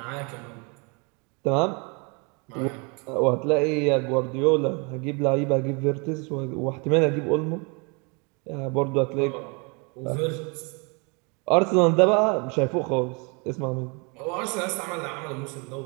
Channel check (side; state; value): left; quieter; 32.1 dB